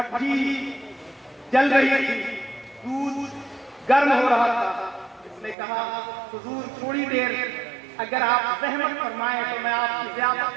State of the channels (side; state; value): left; drops out; at 5.6 s